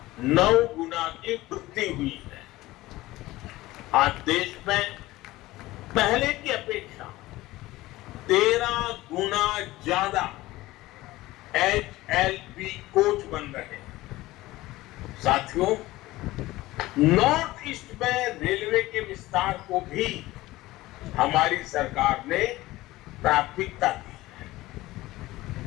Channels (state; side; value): quieter; right; 18.0 dB